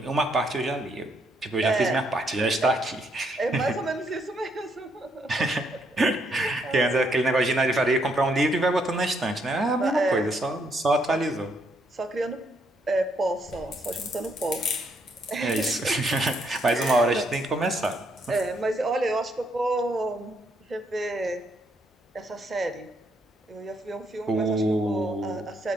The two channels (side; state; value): both; normal; correlation 0.73